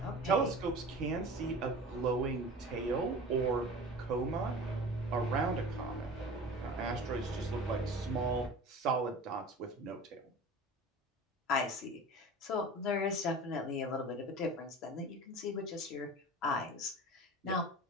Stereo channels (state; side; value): normal; both; correlation 0.37